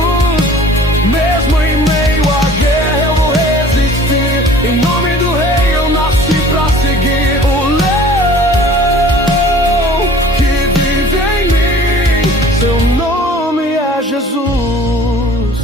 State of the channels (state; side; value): normal; both; correlation 0.48